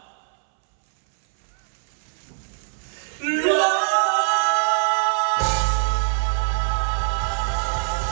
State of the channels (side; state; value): left; silent; 61 dB below the other